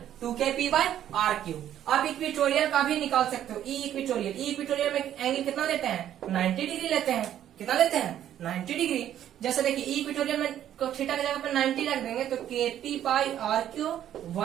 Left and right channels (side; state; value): left; quieter; 11.0 dB